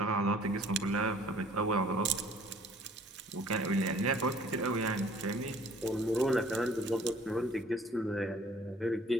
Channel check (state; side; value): normal; both; correlation 0.54